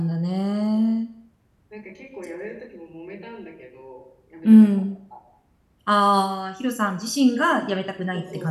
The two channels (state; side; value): identical; both; correlation 1.00